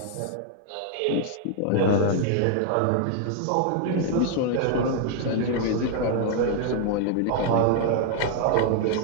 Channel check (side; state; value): both; different; correlation 0.00